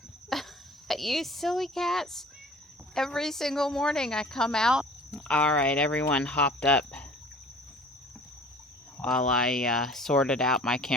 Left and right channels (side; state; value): both; normal; correlation 0.47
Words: You silly cats. Every single morning I come out. All right, everyone hopped up while I sorted out my